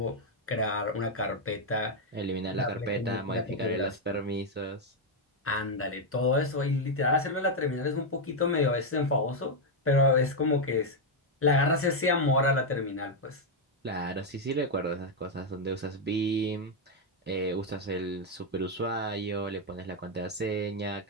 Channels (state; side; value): normal; both; correlation 0.01